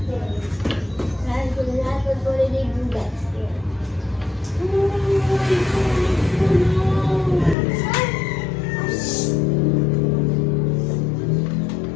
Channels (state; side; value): drops out; right; at 7.6 s